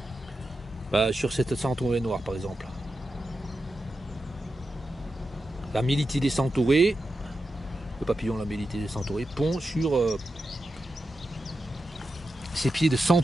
sur cette centaurée noire par exemple. La Mélitidés centaurée, le papillon la Mélitidés centaurée, pond sur ses pieds de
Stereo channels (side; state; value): both; normal; correlation 0.89